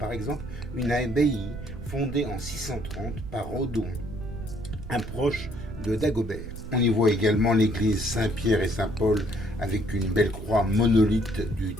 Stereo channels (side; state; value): right; noise; rumble, 10 dB below the sound